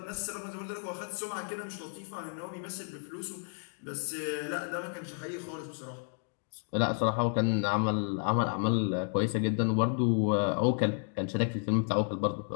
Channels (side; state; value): right; silent; 56 dB below the other